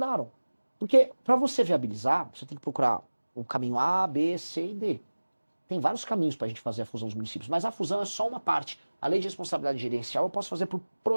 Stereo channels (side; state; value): both; inverted; correlation -1.00